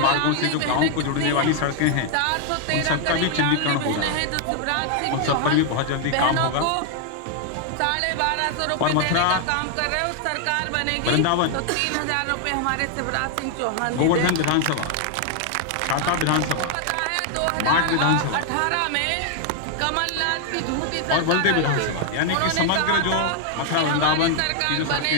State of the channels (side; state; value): both; different; correlation 0.00